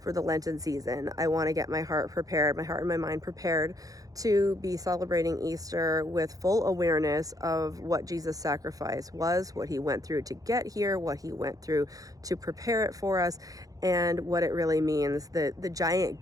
for the Lenten season. I want to get my heart prepared, my heart and my mind prepared to be celebrating Easter with full awareness of what Jesus' sacrifice was, what he went through to get here, what he went through to prepare it for us, and what it really means, the giant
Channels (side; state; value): left; late; 0.17 ms